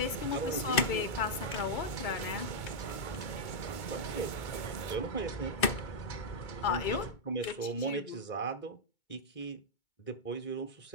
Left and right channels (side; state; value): right; late; 2.2 ms